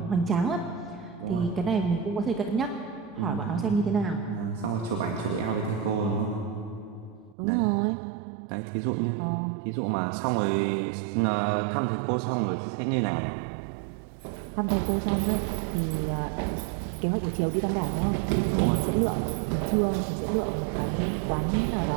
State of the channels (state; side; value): drops out; left; at 7.4 s